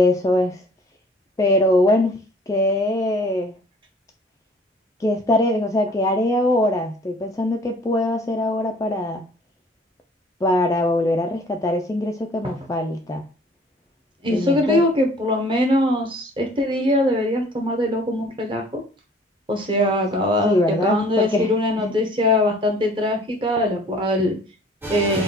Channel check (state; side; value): normal; both; correlation 0.53